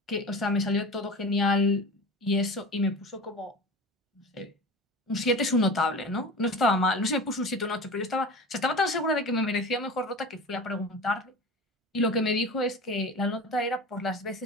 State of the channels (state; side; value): normal; both; correlation 0.34